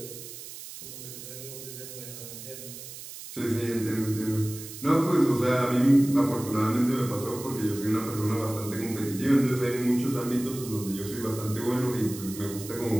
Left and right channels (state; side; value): noise; right; hiss, 12 dB below the sound